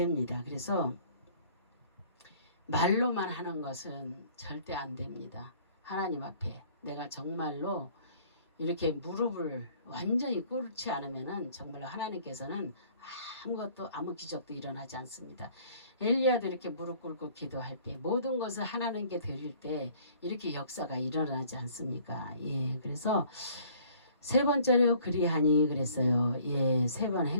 그래서 말로만 하는 것은 절대 안 됩니다. 하나님 앞에 내가 정말로 이렇게 무릎을 완전히 꿇지 않으면은 정말로 하나님께서는 아무것도 아무 기적도 일어나지 않습니다. 엘리야도 이렇게 무릎 꿇고 기도할 때 모든 것을 하나님께 드릴 때 이렇게 역사가 일어나지 않습니까? 그래서 세 번째로 그리하니 그랬어요. 세 번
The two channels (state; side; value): inverted; both; correlation -0.55